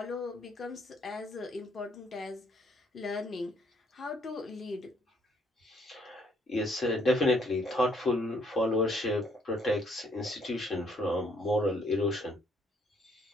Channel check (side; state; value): both; normal; correlation 0.66